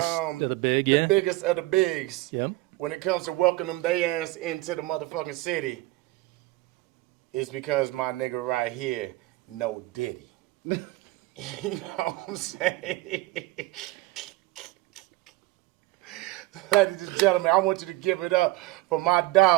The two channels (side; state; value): left; quieter; 19.1 dB